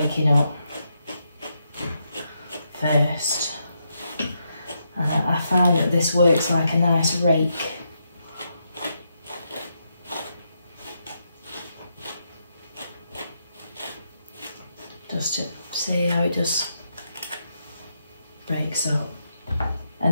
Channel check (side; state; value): both; inverted; correlation -0.81